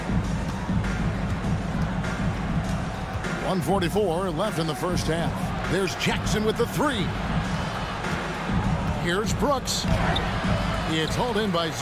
1:44 left in the first half. There's Jackson with the 3. Here's Brooks. It's hauled in by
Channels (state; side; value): identical; both; correlation 1.00